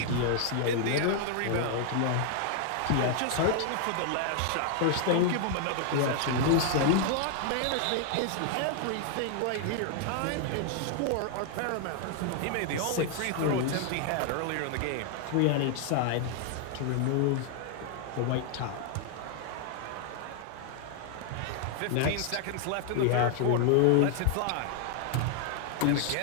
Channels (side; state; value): both; different; correlation 0.00